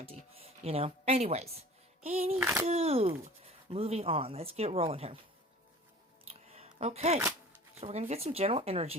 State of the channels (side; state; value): both; normal; correlation 0.43